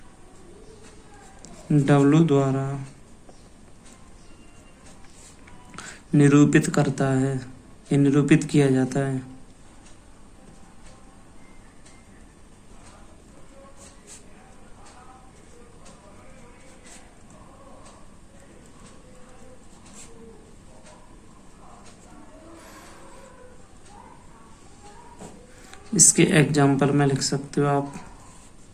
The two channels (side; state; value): both; identical; correlation 1.00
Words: W द्वारा निरूपित करता है, ये निरूपित किया जाता है। इसके एग्जाम्पल में लिख सकते हो आप,